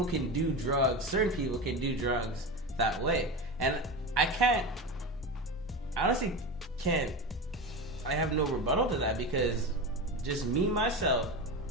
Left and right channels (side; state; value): both; normal; correlation 0.23